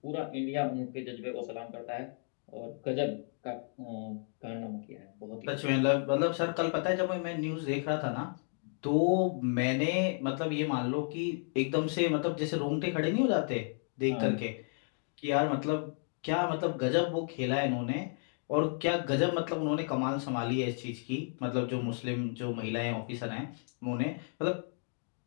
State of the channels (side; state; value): right; silent; 56 dB below the other